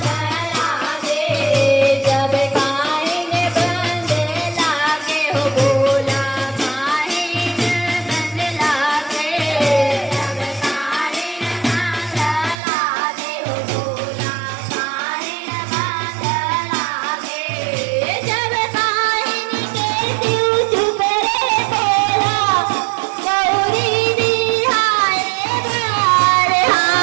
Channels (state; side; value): drops out; left; at 12.6 s